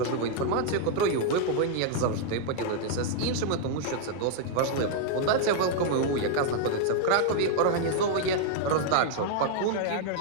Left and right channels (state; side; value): different; both; correlation 0.00